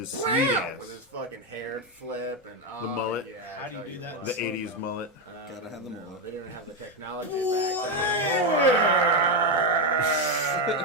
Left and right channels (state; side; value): normal; both; correlation 0.07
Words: sweet With his ass. fuck hair flip and The mullet. Yeah, How do you I tell do that? what. The 80s mullet. Gotta have the No, mullet. They didn't have the technology back